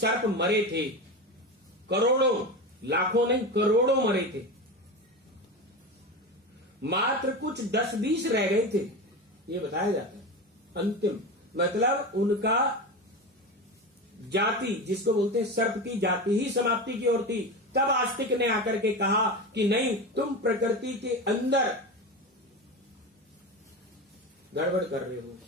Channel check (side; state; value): both; normal; correlation 0.23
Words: मरे थे, करोड़ों, लाखों नहीं करोड़ों मरे थे, मात्र कुछ 10-20 रह गए थे, ये बताया जाता है। अंतिम मतलब उनका जाति, जिसको बोलते हैं सर्प की जाति ही समाप्ति की ओर थी। तब आस्तिक ने आकर के कहा कि नहीं, तुम प्रकृति के अंदर गड़बड़ कर रहे हो,